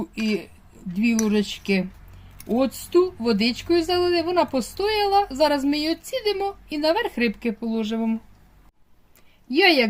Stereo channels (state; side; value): identical; both; correlation 1.00